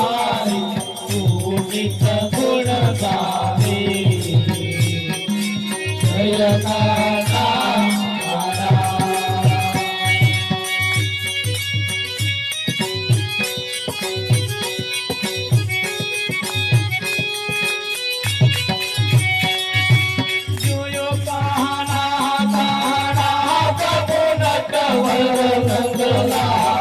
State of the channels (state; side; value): identical; both; correlation 1.00